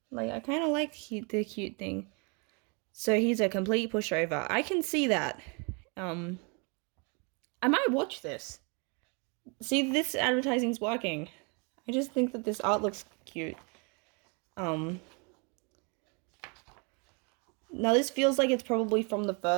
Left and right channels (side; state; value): left; quieter; 33.4 dB